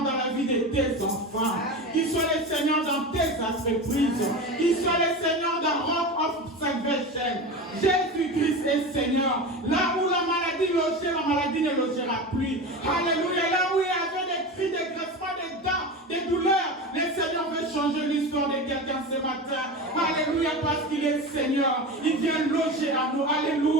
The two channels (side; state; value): both; normal; correlation 0.26